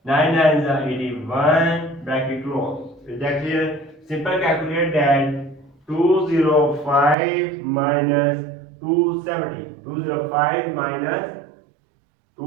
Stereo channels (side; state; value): left; drops out; at 7.2 s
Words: 9 nines are 81 bracket close. Is that clear? Simple calculate that 205 minus 270. 205 minus